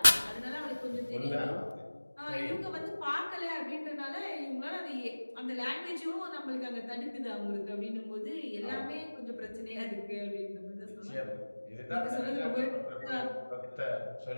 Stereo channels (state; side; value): inverted; both; correlation -1.00